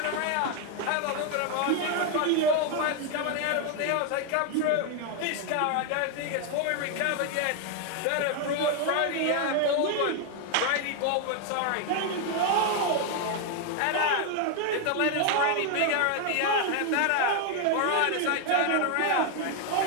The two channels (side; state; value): both; different; correlation 0.00